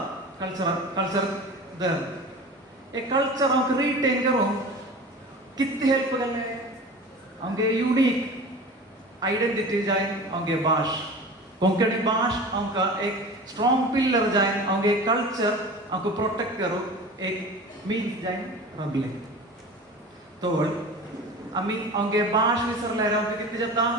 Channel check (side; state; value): both; normal; correlation 0.36